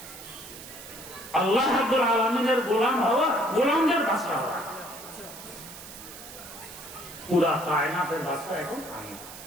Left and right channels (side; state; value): right; noise; hiss, 14 dB below the sound